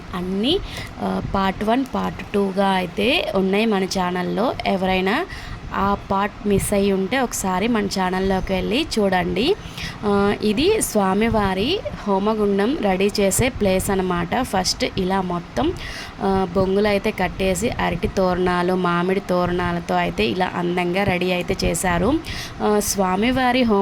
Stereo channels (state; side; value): identical; both; correlation 1.00